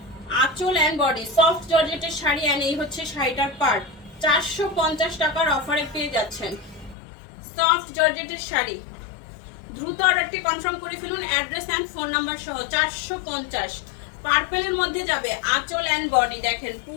আঁচল এন্ড বডি সফট জর্জেটের শাড়ি এন্ড এই হচ্ছে শাড়িটার পার্ট। 450 টাকার অফারে পেয়ে যাচ্ছেন সফট জর্জেটের শাড়ি। দ্রুত অর্ডারটি কনফার্ম করে ফেলুন অ্যাড্রেস এন্ড ফোন নাম্বার সহ। 450 পার্পেলের মধ্যে যাবে আঁচল এন্ড বডি। দেখেন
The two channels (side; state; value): right; drops out; at 7.0 s